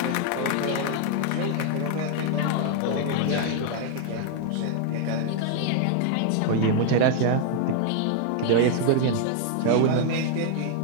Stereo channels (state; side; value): different; both; correlation 0.00